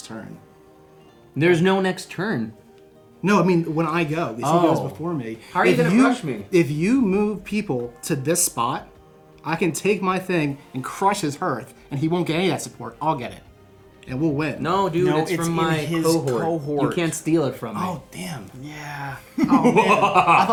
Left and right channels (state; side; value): identical; both; correlation 1.00